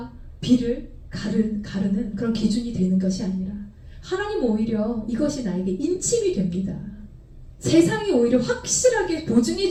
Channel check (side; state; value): both; identical; correlation 1.00